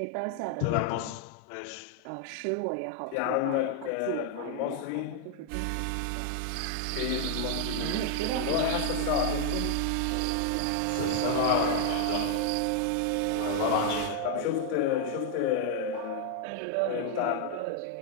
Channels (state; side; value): different; both; correlation 0.00